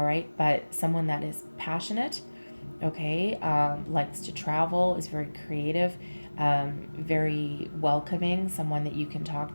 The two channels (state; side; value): inverted; both; correlation -1.00